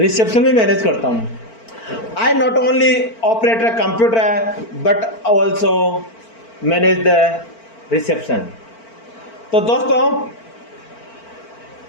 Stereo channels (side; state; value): right; late; 4.4 ms